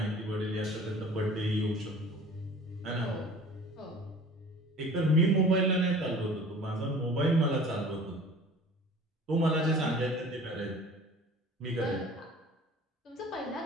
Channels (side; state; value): both; normal; correlation 0.45